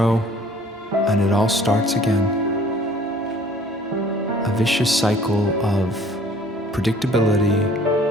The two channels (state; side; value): normal; both; correlation 0.53